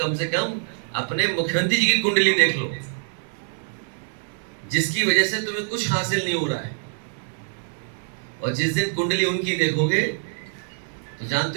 से कम अपने मुख्यमंत्री जी की कुंडली देख लो। जिसकी वजह से तुम्हें कुछ हासिल नहीं हो रहा है। और जिस दिन कुंडली उनकी देखोगे तो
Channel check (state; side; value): silent; left; digital silence